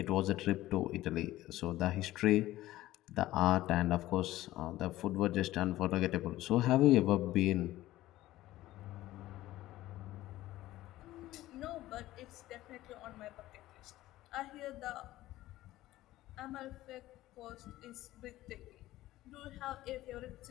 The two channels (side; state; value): right; quieter; 15.9 dB